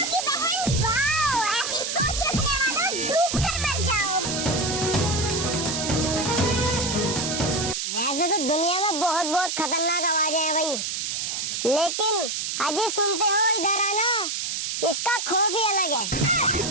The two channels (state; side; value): noise; right; hiss, 2 dB below the sound